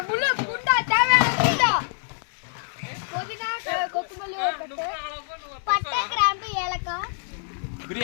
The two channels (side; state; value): right; silent; 61 dB below the other